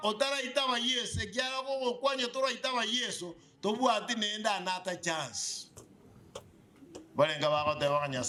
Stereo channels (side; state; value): both; identical; correlation 1.00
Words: otara itaba Yesu ekyala ko kwanya tora itaba Yesu tobwati nenda anata chance balenga bako te bakanya